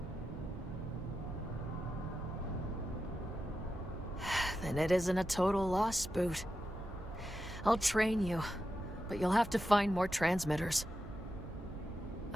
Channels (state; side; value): noise; right; hum, 14 dB below the sound